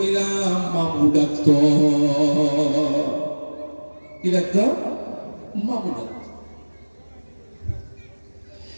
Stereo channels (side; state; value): both; inverted; correlation -1.00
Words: মামু ডাকত। কি ডাকত? মামু ডাকত।